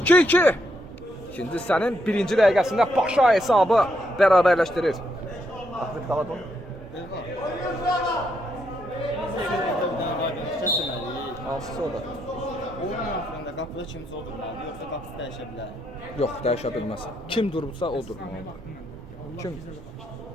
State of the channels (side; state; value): both; normal; correlation 0.77